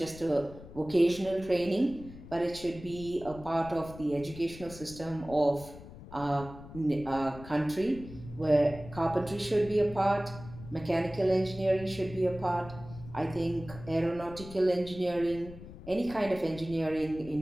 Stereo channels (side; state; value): left; noise; rumble, 15 dB below the sound